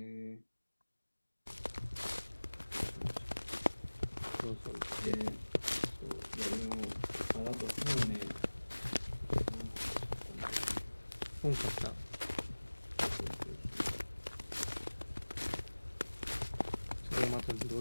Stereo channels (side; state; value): both; inverted; correlation -1.00